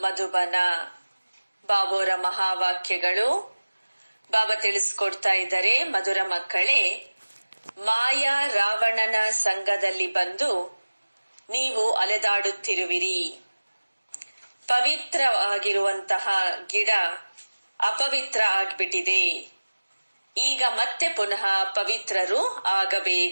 ಮಧುಬನ. ಬಾಬೋರ ಮಹಾವಾಕ್ಯಗಳು. ಬಾಬಾ ತಿಳಿಸ್ಕೊಡ್ತಾ ಇದ್ದಾರೆ, ಮಧುರ ಮಕ್ಕಳೇ, ಮಾಯಾ ರಾವಣನ ಸಂಘದಲ್ಲಿ ಬಂದು ನೀವು ಅಲೆದಾಡುತ್ತಿರುವಿರಿ. ಪವಿತ್ರವಾಗಿರುವಂತಹ ಗಿಡ ಅಪವಿತ್ರ ಆಗ್ಬಿಟ್ಟಿದೆ. ಈಗ ಮತ್ತೆ ಪುನಃ ಪವಿತ್ರರು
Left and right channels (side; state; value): both; inverted; correlation -1.00